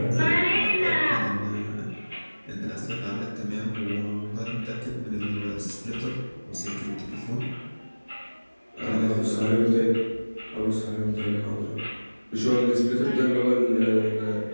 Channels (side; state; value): both; inverted; correlation -1.00